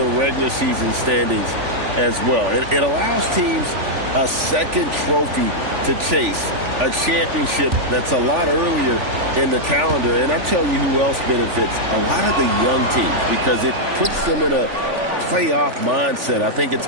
regular season standings as well. It allows teams a second trophy to chase, a championship that's a lot earlier in the calendar. And I'm telling you who else benefits, a lot of the young teams, because it puts them in a playoff mindset. I think it's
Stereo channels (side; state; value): left; late; 3.5 ms